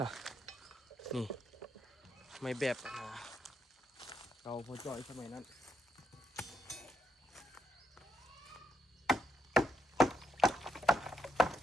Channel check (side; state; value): both; normal; correlation 0.78